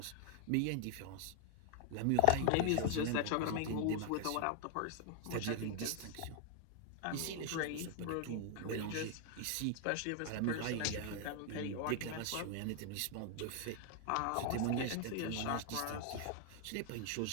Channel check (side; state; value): both; different; correlation 0.00